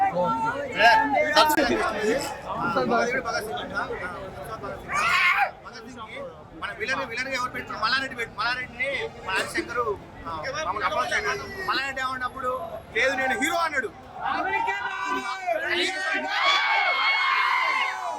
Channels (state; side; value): identical; both; correlation 1.00